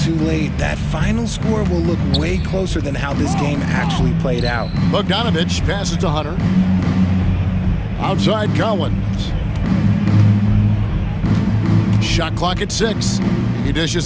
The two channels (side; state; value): both; identical; correlation 1.00